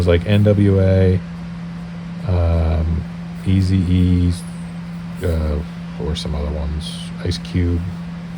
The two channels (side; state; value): both; identical; correlation 1.00